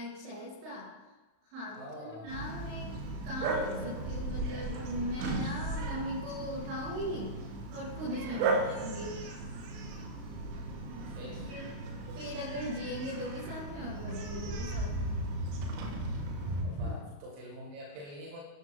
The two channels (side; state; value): left; late; 35 ms